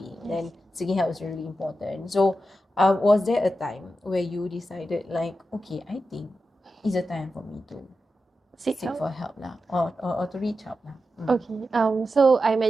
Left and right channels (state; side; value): normal; both; correlation 0.90